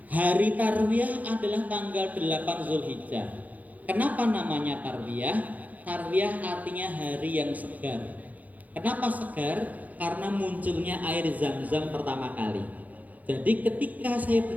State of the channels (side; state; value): left; late; 0.078 ms